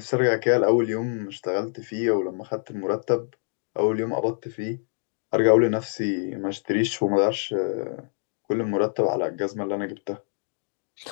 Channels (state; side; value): silent; right; digital silence